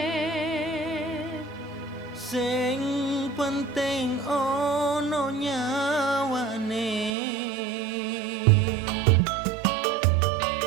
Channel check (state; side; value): drops out; left; at 7.1 s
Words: sing penting ono nyawane.